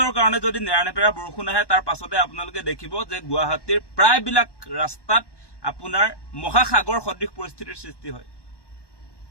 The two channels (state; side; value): late; right; 1.1 ms